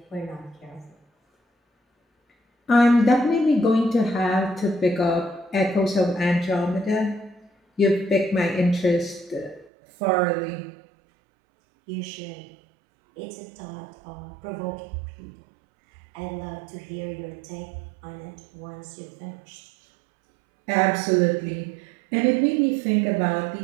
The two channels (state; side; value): drops out; left; at 9.7 s